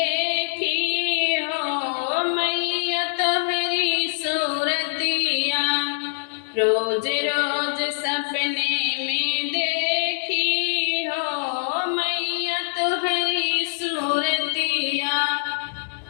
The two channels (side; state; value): right; silent; digital silence